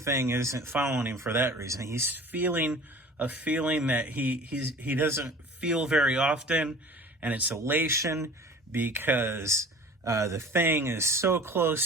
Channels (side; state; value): both; normal; correlation 0.43